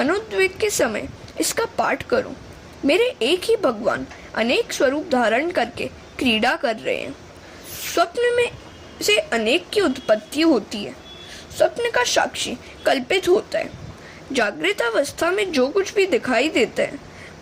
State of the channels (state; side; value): identical; both; correlation 1.00